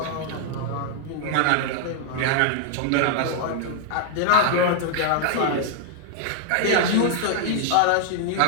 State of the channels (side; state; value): both; different; correlation 0.00